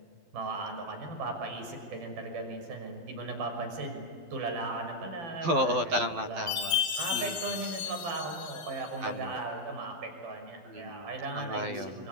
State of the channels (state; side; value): late; left; 11 ms